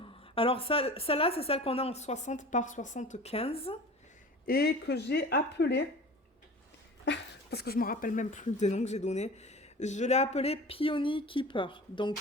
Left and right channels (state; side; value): normal; both; correlation 0.38